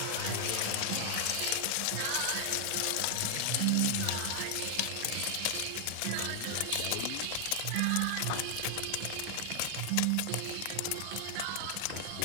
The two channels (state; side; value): different; both; correlation 0.00